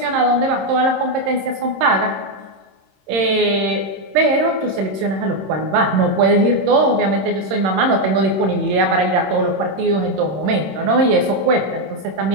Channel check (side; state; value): left; late; 26 ms